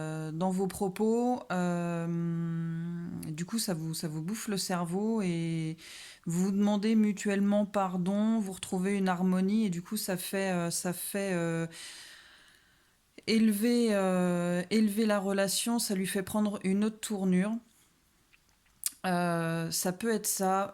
vos propos. Du coup, ça vous bouffe le cerveau et vous vous demandez mutuellement pardon, vous retrouvez une harmonie et du coup, ça fait élever la relation, ça lui fait prendre une autre tournure. Ça peut être ça,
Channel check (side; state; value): both; identical; correlation 1.00